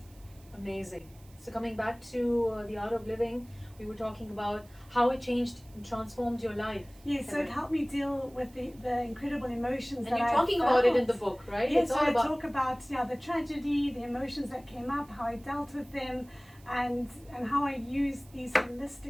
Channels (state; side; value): noise; right; hiss, 27 dB below the sound